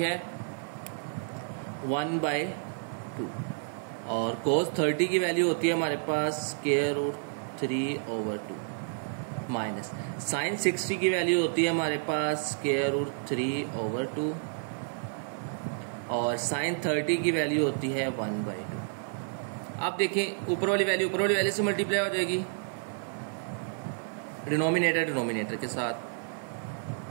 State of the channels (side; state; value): left; silent; digital silence